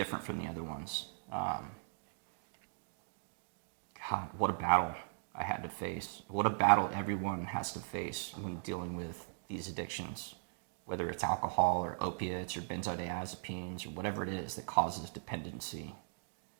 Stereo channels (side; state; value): left; silent; digital silence